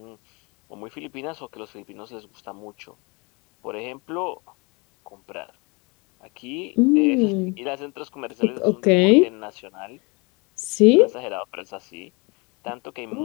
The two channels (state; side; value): quieter; right; 28.7 dB